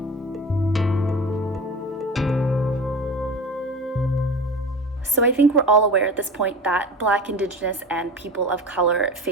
So I think we're all aware at this point that Black, Indigenous, and people of color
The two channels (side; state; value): both; normal; correlation 0.32